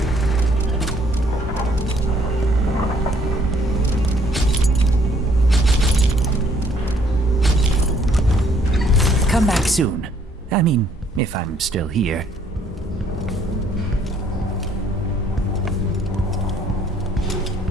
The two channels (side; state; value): both; normal; correlation 0.63